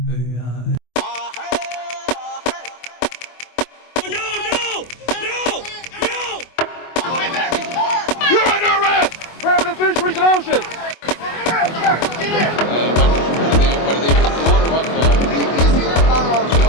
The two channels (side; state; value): right; late; 24 ms